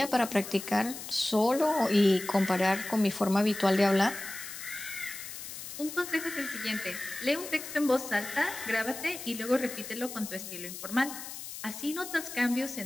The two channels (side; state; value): left; noise; hiss, 10 dB below the sound